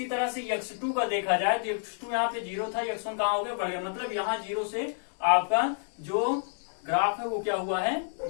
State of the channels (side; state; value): right; silent; digital silence